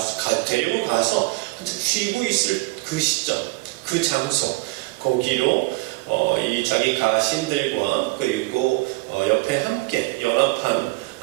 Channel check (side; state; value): left; quieter; 24.4 dB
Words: 데리고 가서 한참 쉬고 있을 그 시점, 그 장소, 거기로 이 자기 가신들과 그리고 옆에 함께 연합한